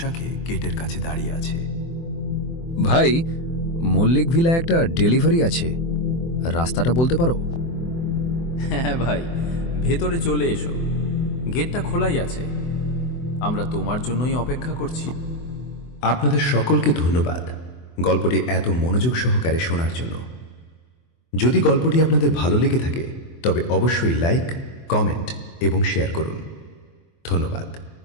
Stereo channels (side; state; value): right; late; 24 ms